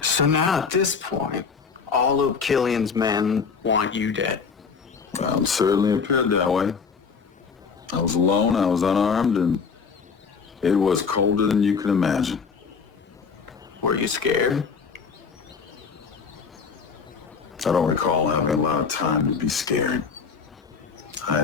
So now at this point, all of Killian's men want you dead. Well, it certainly appeared that way. I was alone, I was unarmed, and it was colder than you can imagine. Were you scared? I don't recall having a lot of time to be scared. I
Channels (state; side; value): quieter; right; 5.7 dB